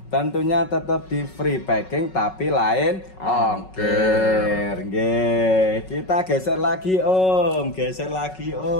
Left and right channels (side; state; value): right; late; 5.4 ms